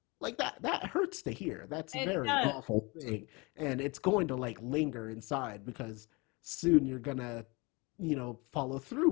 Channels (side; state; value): right; quieter; 27.0 dB